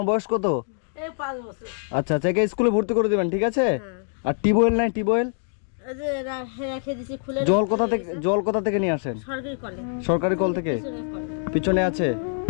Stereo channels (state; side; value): silent; right; 62 dB below the other